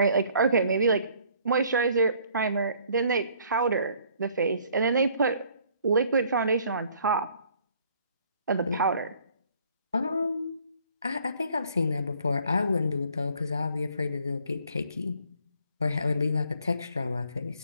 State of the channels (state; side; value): inverted; both; correlation -0.60